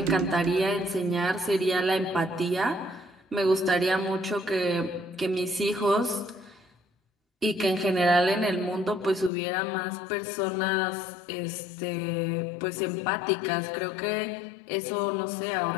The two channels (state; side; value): drops out; right; at 9.3 s